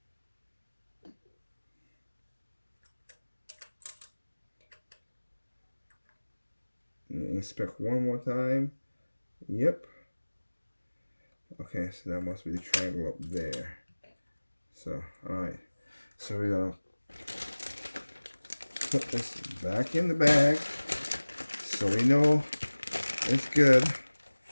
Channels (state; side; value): inverted; both; correlation -1.00